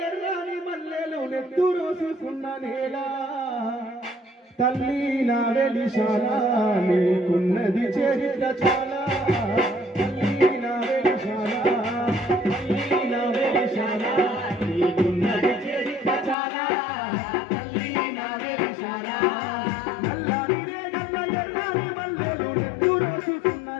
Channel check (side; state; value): right; drops out; at 16.4 s